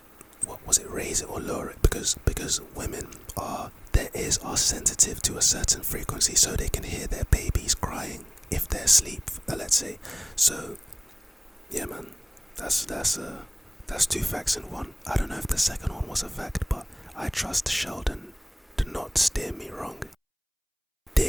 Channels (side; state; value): both; identical; correlation 1.00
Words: what was it, raise it or lower it, because women their ears are sensitive to a certain frequency, so they can hear their babies crying if they're asleep, let's say. So yeah, man, that's 2 facts in one. I don't know if the second one was a fact, but I trust Sheldon to not steer me wrong.